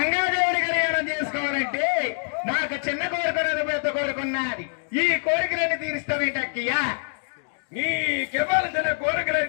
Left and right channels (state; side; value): silent; right; digital silence